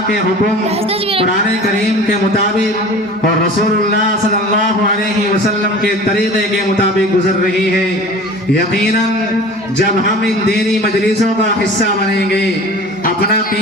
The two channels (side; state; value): both; normal; correlation 0.41